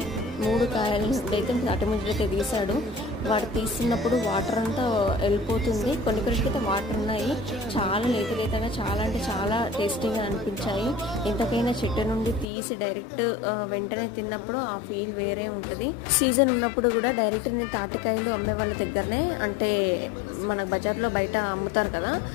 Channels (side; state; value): right; drops out; at 12.5 s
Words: 3 కాయల నుండి అయితే తాటి ముంజలు అయితే తీసాడు. వాడు తీస్తున్నప్పుడు వాటర్ అంతా వెళ్ళిపోతుంది. కొన్నిటికైతే వాటర్ ఉన్నాయి. చాలా లేతగా చాలా అంటే చాలా టేస్టీగా అనిపించాయి. ఎంతకైనా చెట్టు నుండి తీసి డైరెక్ట్ వెంటనే తిన్నప్పుడు ఆ ఫీల్ వేరే ఉంటుంది. సీజన్ ఉన్నప్పుడు కూడా డైరెక్ట్ నేను తాటికాయలు అమ్మే వాళ్ళ దగ్గరనే, అంటే మన బజార్లో బయట అమ్ముతారు కదా,